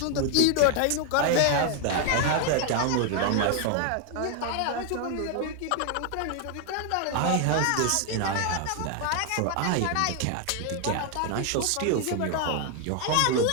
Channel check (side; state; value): both; different; correlation 0.00